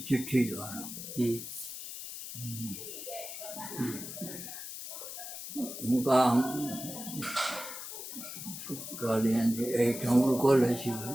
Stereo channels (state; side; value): noise; left; hiss, 9 dB below the sound